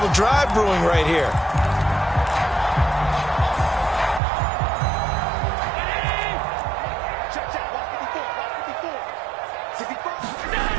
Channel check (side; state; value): left; drops out; at 4.2 s